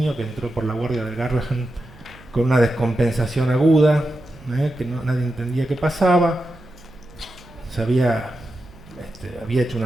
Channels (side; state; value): right; noise; hum, 22 dB below the sound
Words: que entró por la guardia del Garrahan con una descompensación aguda, que nadie entendía qué pasaba. Había hecho